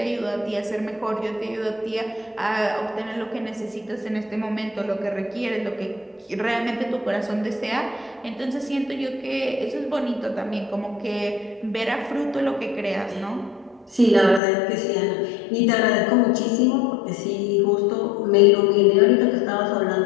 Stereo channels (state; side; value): drops out; right; at 14.4 s